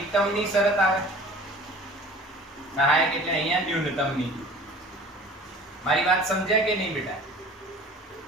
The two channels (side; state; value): both; normal; correlation 0.44